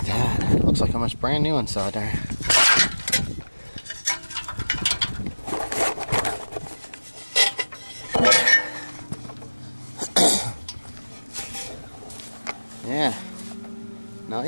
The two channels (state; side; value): inverted; both; correlation -1.00